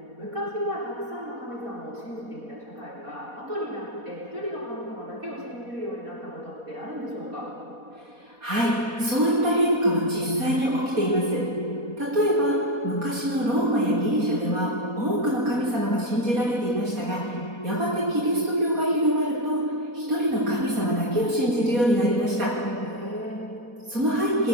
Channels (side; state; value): left; late; 4.1 ms